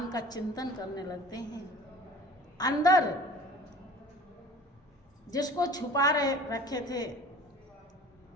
का चिंतन करने लगते हैं। अंदर जिसको छुपा रखे थे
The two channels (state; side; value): normal; both; correlation 0.44